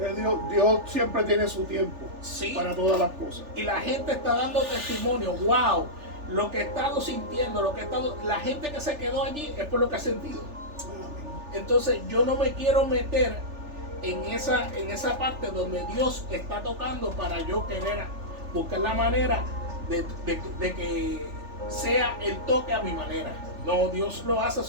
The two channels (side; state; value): left; late; 3.4 ms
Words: Dios siempre tiene su tiempo Sí. para todas las cosas. Y la gente está dando testimonio, wow, lo que he estado sintiendo, la gente que se quedó allí es por lo que ha sentido. Amén. Entonces yo no me quiero meter en esa parte donde Dios está tocando para yo querer buscar la manera de que sea el toque a mi manera. No, Dios lo hace a